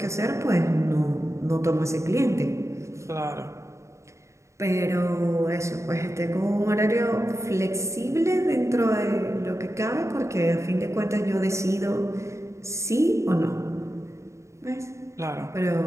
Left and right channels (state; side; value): late; left; 0.14 ms